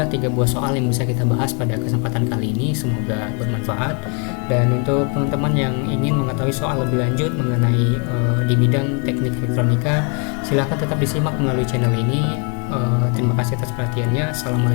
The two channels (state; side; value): quieter; right; 36.8 dB